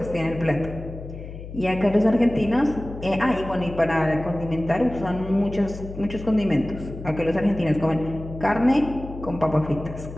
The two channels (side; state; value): left; noise; hum, 11 dB below the sound